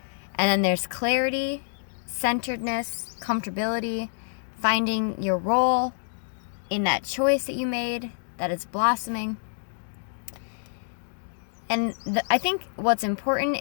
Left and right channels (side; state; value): right; silent; digital silence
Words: And then there's clarity, centeredness, comfortability, finding your role in that choice that you made that is blossoming. And I think what's important